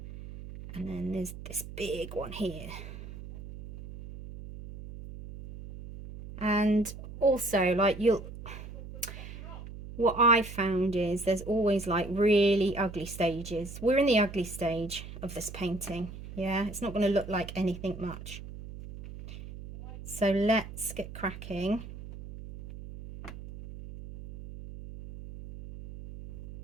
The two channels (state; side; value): noise; right; hum, 12 dB below the sound